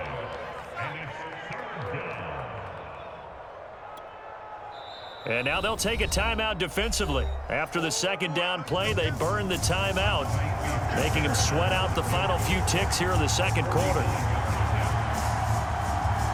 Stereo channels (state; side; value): identical; both; correlation 1.00